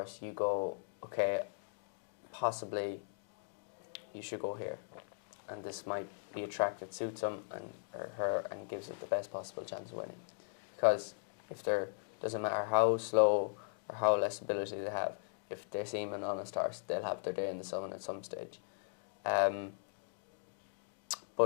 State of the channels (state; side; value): silent; right; digital silence